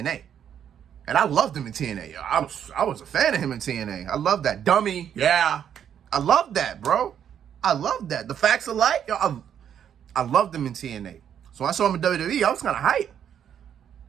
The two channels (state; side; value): quieter; left; 9.0 dB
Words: And I loved him in TNA. I was a fan of him in TNA. I love that. Dummy. Yeah. I love that, bro. I love that. The Facts of Life. I loved him in TNA. So when I saw him in WWE, I was kind of hype.